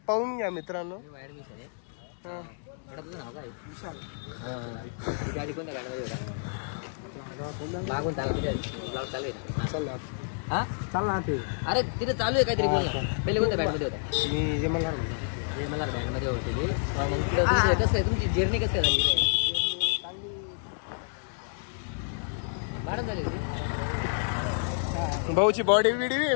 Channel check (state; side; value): silent; right; digital silence